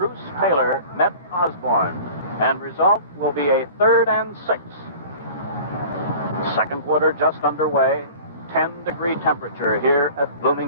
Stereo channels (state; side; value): inverted; both; correlation -0.42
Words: Taylor met Osborne, and result will be a 3rd and 6. Second quarter just underway. 10-degree temperature here at